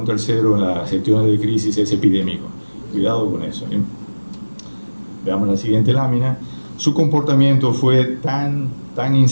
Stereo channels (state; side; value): inverted; both; correlation -1.00